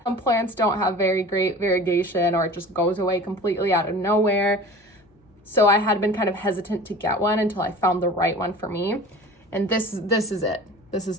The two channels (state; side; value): normal; both; correlation 0.40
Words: some plants don't have very great variegation or it just goes away completely out of nowhere. So I had been kind of hesitant to get one until I found the right one for me. And this is it. This is